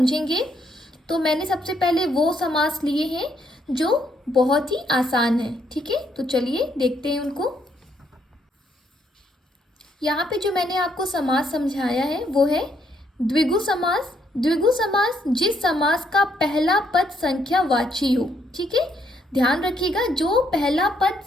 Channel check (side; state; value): both; normal; correlation 0.73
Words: तो मैंने सबसे पहले वो समास लिए हैं जो बहुत ही आसान है। ठीक है, तो चलिए देखते हैं उनको। यहाँ पे जो मैंने आपको समास समझाया है वो है द्विगु समास। द्विगु समास जिस समास का पहला पद संख्यावाची हो। ठीक है, ध्यान रखिएगा, जो पहला पद